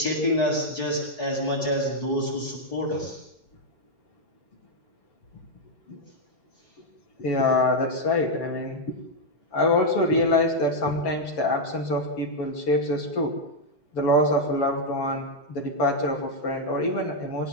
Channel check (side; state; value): right; late; 4.7 ms